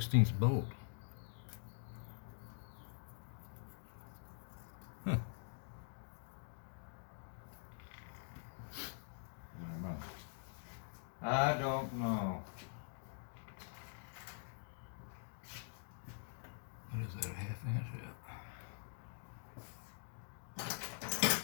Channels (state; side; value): silent; right; digital silence